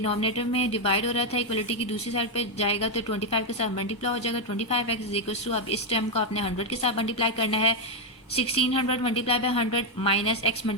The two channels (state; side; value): normal; both; correlation 0.04